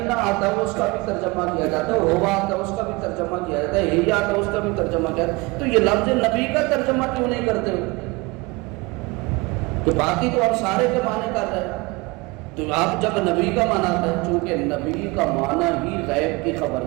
آتا ہے اس کا بھی ترجمہ کیا جاتا ہے، ہوا آتا ہے اس کا بھی ترجمہ کیا جاتا ہے، ہی آتا ہے اس کا بھی ترجمہ کیا جاتا ہے۔ تو یہ لفظ نبی کا ترجمہ کیوں نہیں کرتے ہو؟ تو باقی تو آپ سارے کے معنی کر رہے ہیں، تو آپ جب نبی کا معنی ہے، چونکہ نبی کا معنی ہی غیب کی خبر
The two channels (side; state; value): left; quieter; 24.5 dB